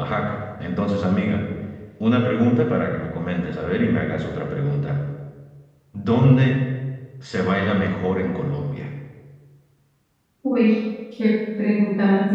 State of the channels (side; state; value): both; identical; correlation 1.00